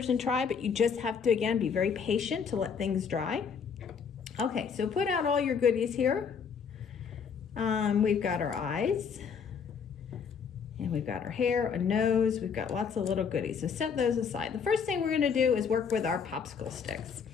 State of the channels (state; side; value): quieter; right; 6.4 dB